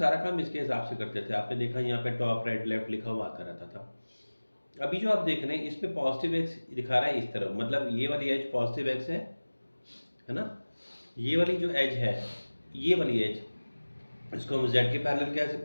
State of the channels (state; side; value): inverted; both; correlation -1.00